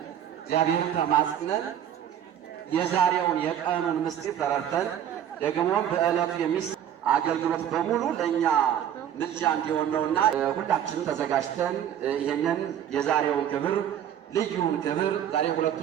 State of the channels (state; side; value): quieter; left; 10.0 dB